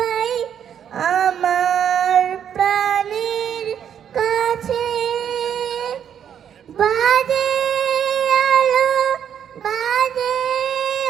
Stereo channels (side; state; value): left; quieter; 8.8 dB